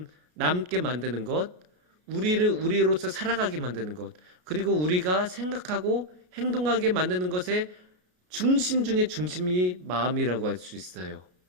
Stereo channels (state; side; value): late; left; 33 ms